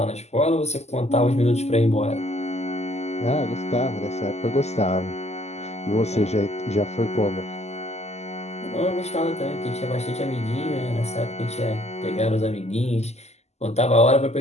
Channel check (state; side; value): late; right; 0.32 ms